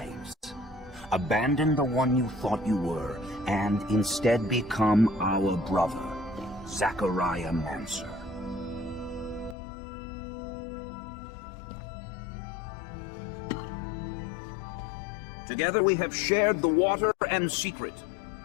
abandon the one you thought you were, and instead become our brother, Zachariah Mancer. Together we have shared the water and secret.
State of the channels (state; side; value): drops out; right; at 9.6 s